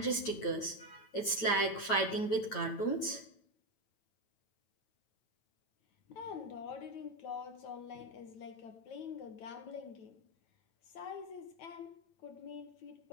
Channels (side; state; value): right; late; 9.2 ms